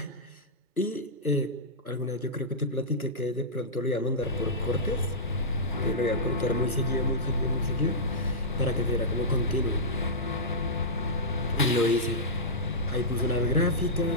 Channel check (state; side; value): normal; both; correlation -0.13